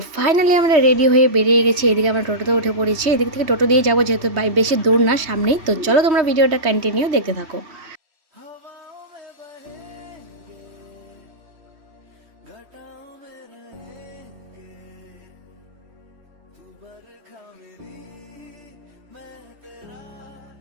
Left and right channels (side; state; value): left; late; 3.2 ms